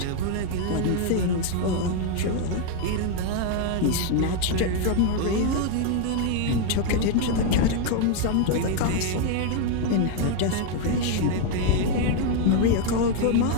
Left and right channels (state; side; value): different; both; correlation 0.00